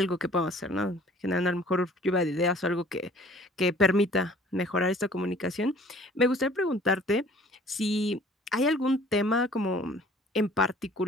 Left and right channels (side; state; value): both; normal; correlation 0.52